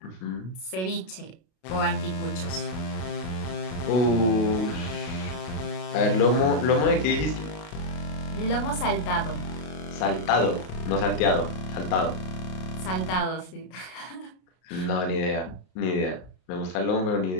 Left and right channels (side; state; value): right; late; 32 ms